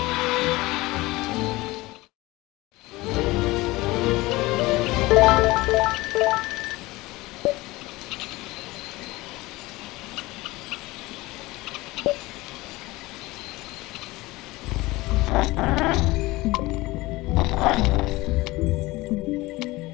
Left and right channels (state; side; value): quieter; right; 20.4 dB